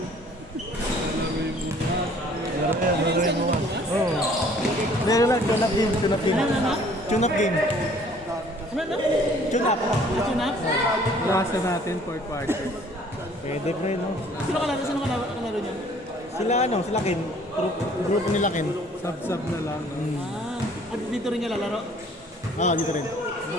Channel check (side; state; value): both; normal; correlation 0.56